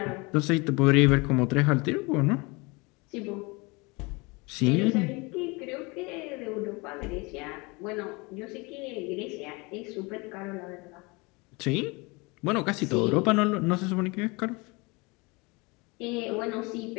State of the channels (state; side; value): quieter; right; 26.7 dB